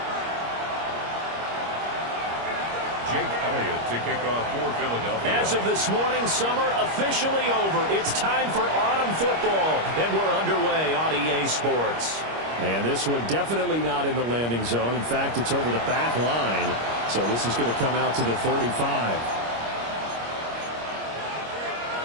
To kick off for Philadelphia. As of this morning, summer officially over. It's time for autumn football, and we're underway on EA Sports. And this one definitely not in the landing zone. In fact, it's over the back line. So this is going to come out to the 35.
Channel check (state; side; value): late; left; 25 ms